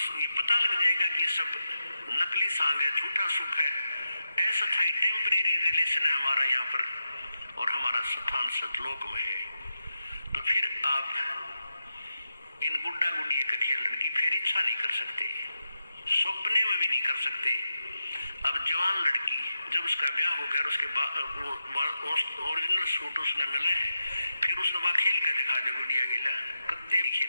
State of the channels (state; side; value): inverted; both; correlation -0.88